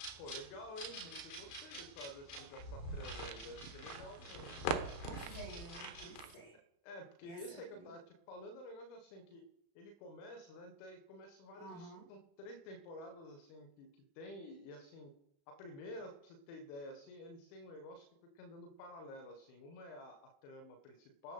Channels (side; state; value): right; late; 35 ms